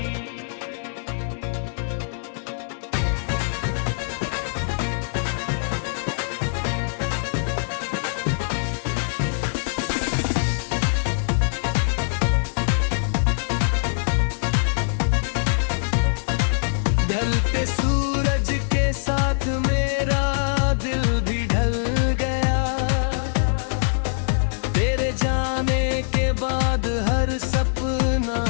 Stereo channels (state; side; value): silent; right; digital silence